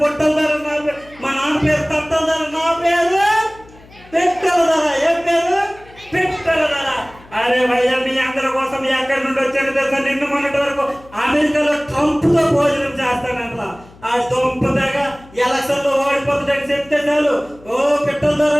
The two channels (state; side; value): noise; left; hum, 24 dB below the sound